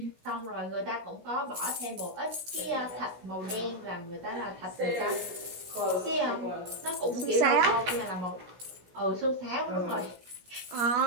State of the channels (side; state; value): left; late; 16 ms